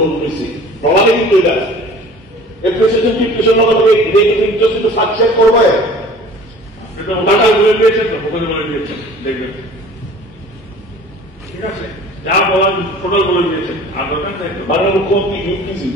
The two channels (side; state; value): both; normal; correlation 0.46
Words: পেয়েছি, ডলারে কিন্তু এটা এপ্রিসিয়েশন ডিপ্রেশন ইন্টারেস্ট একটু সাকসেস করবে, টাকা বলে দিয়েছেন তো, ওখানে বলে দিয়েছেন, দেখবেন। ঠিক আছে, যা বলার টোটাল বলে দিয়েছেন, আর দরকার চাই মাননীয় মুখ্যমন্ত্রী ইউপিস